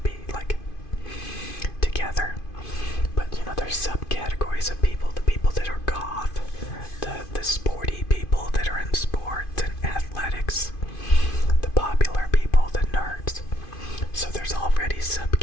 like together. But you know, there's subcategories of people, the people that are goth, the sporty people that are in sports and athletics, the popular people, the nerds. So there's already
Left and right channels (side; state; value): right; late; 2.5 ms